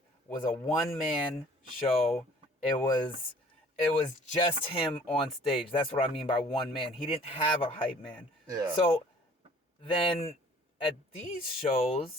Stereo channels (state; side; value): normal; both; correlation 0.53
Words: was a one-man show. It was just him on stage. That's what I mean by one man. He didn't have a hype man. Yeah. So then at these